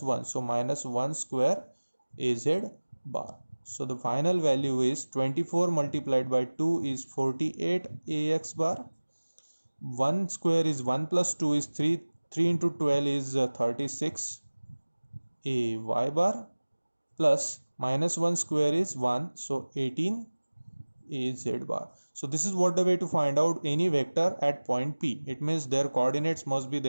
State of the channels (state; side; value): inverted; both; correlation -1.00